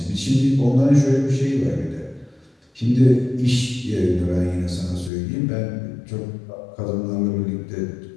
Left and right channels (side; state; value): right; drops out; at 5.1 s